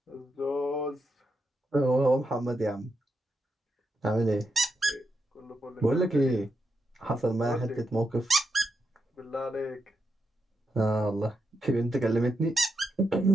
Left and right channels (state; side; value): normal; both; correlation 0.84